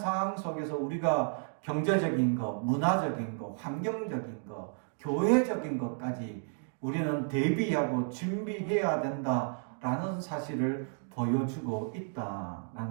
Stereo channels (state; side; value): silent; left; 56 dB below the other